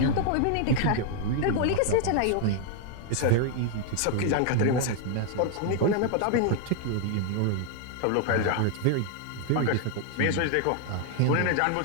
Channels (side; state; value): both; different; correlation 0.00